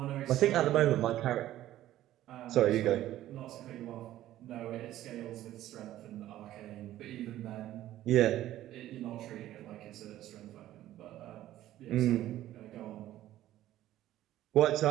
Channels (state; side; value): quieter; left; 13.7 dB